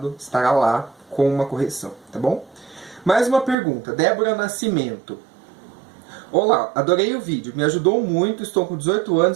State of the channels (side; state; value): left; drops out; at 3.6 s